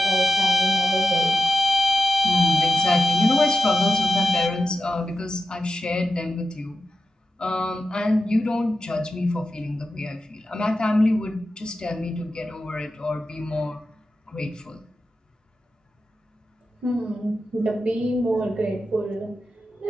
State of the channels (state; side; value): normal; both; correlation 0.90